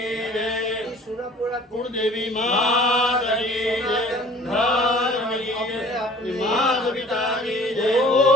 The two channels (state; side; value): normal; both; correlation 0.50